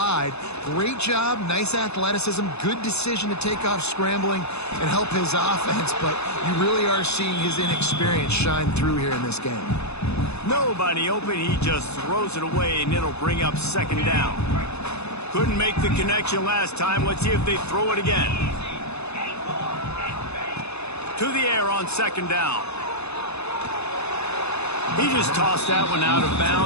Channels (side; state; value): right; late; 0.80 ms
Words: Great job, nice athleticism, good decision to take off scrambling and help his offense, but you really are seeing his inexperience shine through here in this game. Nobody open, he just throws it away, and it'll bring up second down. Couldn't make the connection last time. Let's see if they throw it again. To the air on second down. He just tossed that one out of